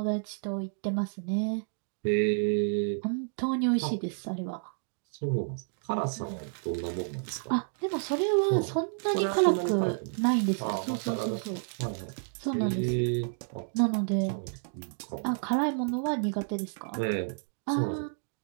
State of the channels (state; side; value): silent; left; digital silence